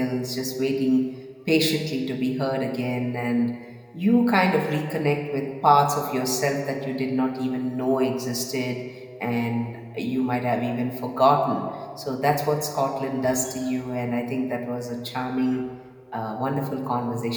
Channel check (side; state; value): both; identical; correlation 1.00